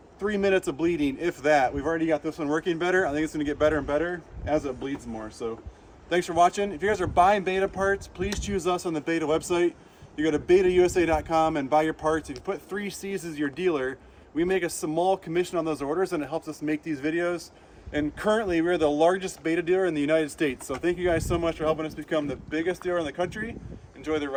3 minutes of bleeding, if that. We've already got this one working better. I think it's gonna get better and better as it bleeds more. So thanks for watching. If you guys are buying Beta parts, please choose us on the Beta website. You go to betausa.com and buy your parts. If you put 3Cs as your dealer, we make a small commission on those orders and it helps us make these videos. And currently we're the largest Beta dealer in the United States. So thank you guys so much for helping us become the biggest dealer in the country. Enjoy the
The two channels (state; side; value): identical; both; correlation 1.00